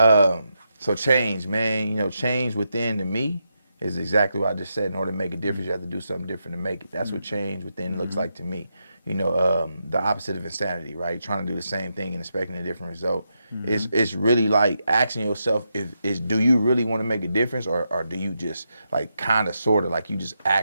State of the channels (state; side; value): inverted; both; correlation -0.84